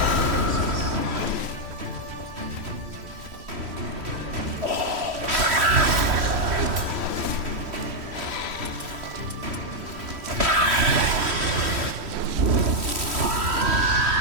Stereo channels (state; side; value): late; left; 3.1 ms